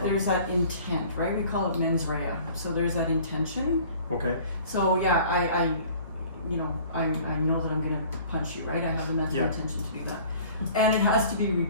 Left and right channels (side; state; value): both; inverted; correlation -0.49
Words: intent, right? We call it mens rea. So there's that intention. Okay. So yeah, I know that I'm gonna punch you, right? I have the mental intention to do that. And it has to be